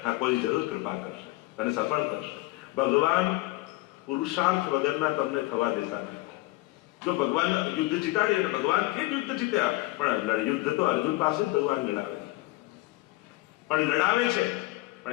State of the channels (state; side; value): quieter; right; 20.0 dB